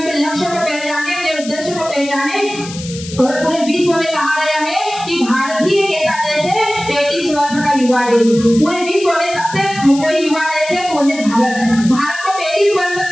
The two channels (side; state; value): left; noise; hiss, 13 dB below the sound